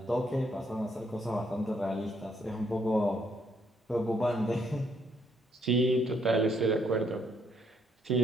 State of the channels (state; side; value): normal; both; correlation 0.71